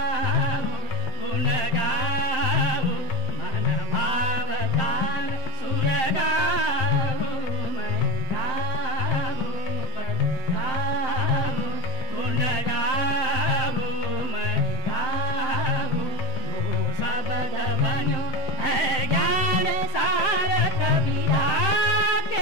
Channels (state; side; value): late; right; 7.7 ms